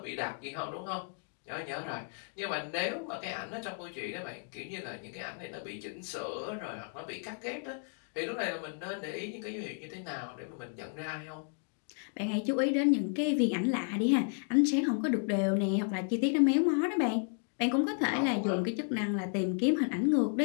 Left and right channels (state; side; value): silent; right; 56 dB below the other